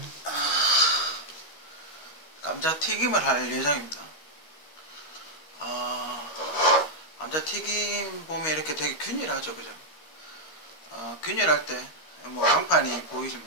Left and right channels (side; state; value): right; late; 13 ms